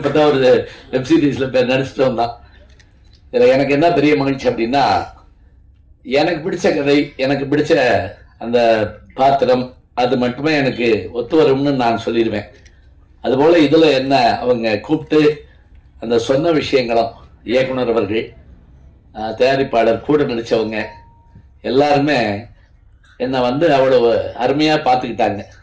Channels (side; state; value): both; identical; correlation 1.00